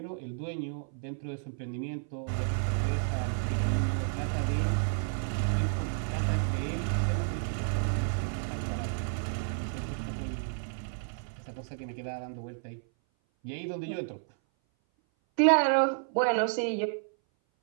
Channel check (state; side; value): silent; left; 57 dB below the other